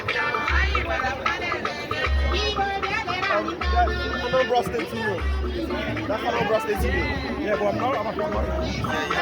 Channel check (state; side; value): identical; both; correlation 1.00